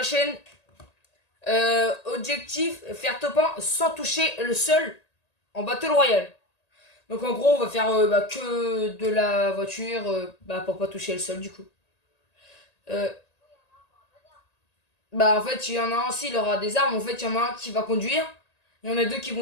chaîne. Objectif, faire top 1 sans toucher le sol en Battle Royale. Donc en gros, on va faire que de la voiture pour pas toucher le sol du coup. Euh, en fait, il y en a un, s'il aura des armes, en fait, il y en a un qui va conduire. Il y en a deux qui vont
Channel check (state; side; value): late; right; 1.8 ms